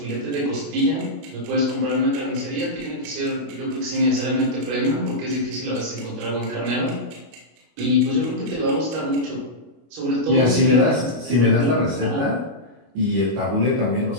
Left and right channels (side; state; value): left; late; 25 ms